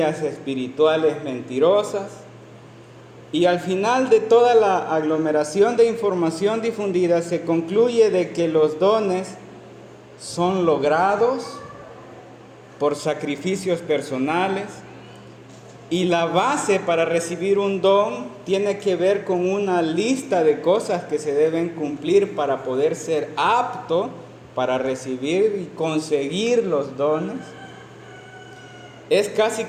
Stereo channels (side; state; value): both; identical; correlation 1.00